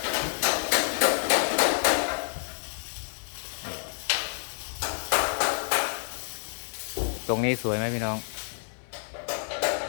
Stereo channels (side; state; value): right; silent; digital silence